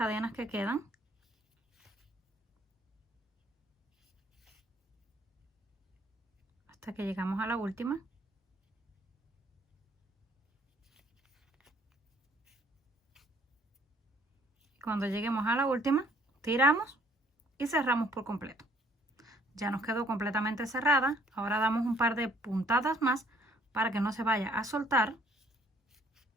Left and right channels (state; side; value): normal; both; correlation 0.62